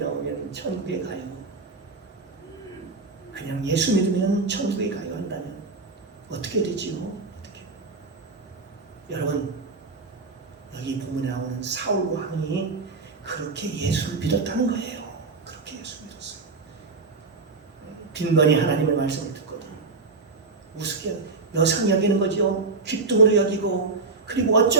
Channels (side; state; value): left; quieter; 4.0 dB